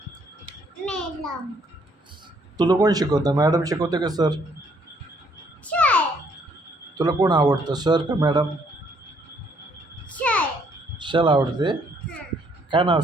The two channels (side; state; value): both; normal; correlation 0.67